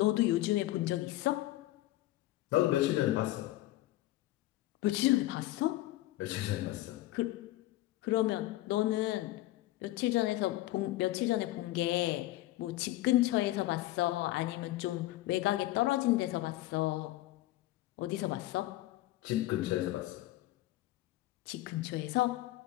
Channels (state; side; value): quieter; right; 16.5 dB